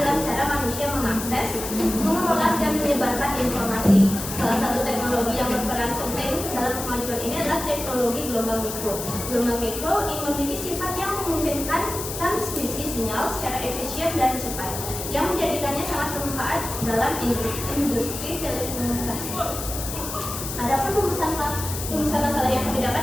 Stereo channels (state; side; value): noise; left; hiss, 7 dB below the sound